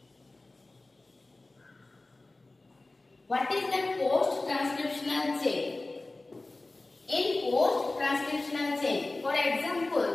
What is the post-transcriptional chain? In post-transcriptional chain, for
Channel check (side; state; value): right; quieter; 3.1 dB